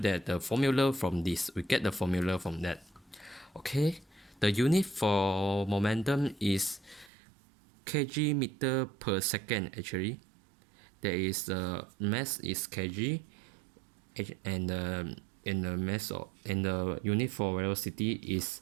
that the formula from this, we get the formula from that. Okay, the unit for momentum is kg meter per second. Actually, there is the mass is kg, and the mass and the unit for velocity is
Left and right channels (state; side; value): drops out; left; at 7.1 s